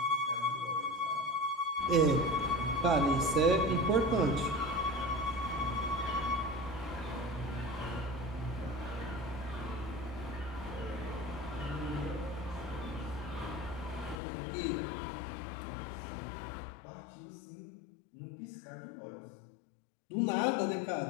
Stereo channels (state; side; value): drops out; right; at 14.2 s